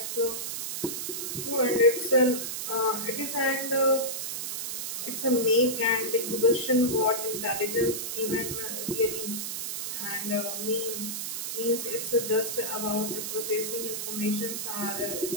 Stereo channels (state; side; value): noise; right; hiss, 4 dB below the sound